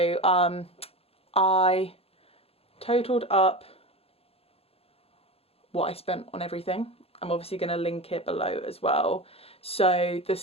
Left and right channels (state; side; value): late; right; 0.28 ms